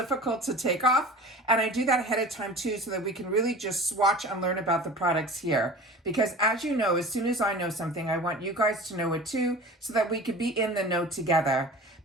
to take off, and I do that ahead of time too, so that we can really just swatch and learn about the products here, because as you know, as soon as I know something, I want you guys to know it too, so that we could be in the know together.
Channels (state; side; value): normal; both; correlation 0.38